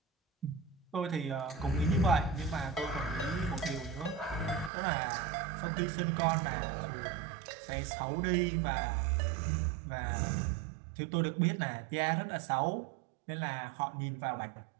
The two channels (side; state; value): left; drops out; at 4.7 s